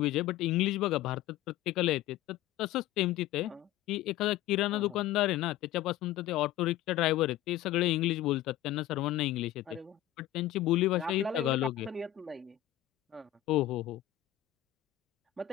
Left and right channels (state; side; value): quieter; right; 14.0 dB